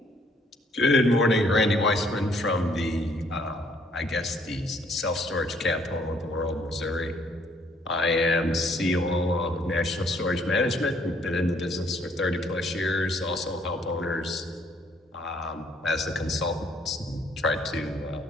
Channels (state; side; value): normal; both; correlation 0.65